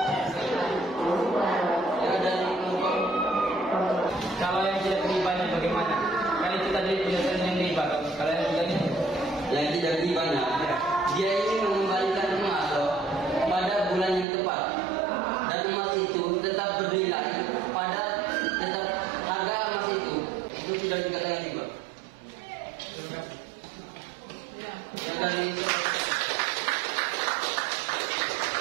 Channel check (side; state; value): left; drops out; at 14.2 s